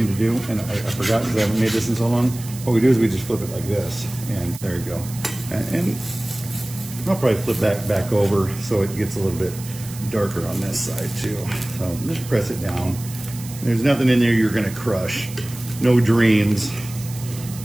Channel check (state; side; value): noise; right; hiss, 15 dB below the sound